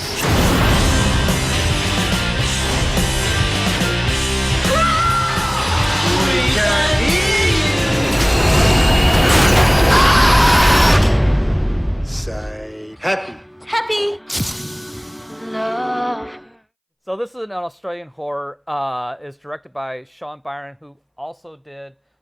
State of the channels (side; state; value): both; identical; correlation 1.00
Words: Say happy. Happy. Love. So this is an Australian horror. It's directed by Sean Byrne, who also did